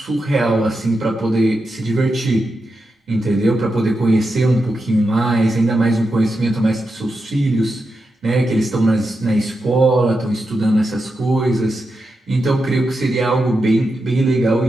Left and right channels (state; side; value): normal; both; correlation 0.88